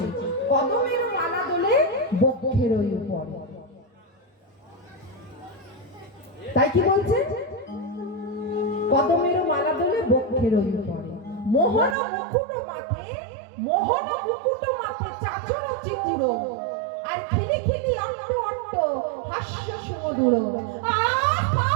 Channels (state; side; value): drops out; left; at 12.0 s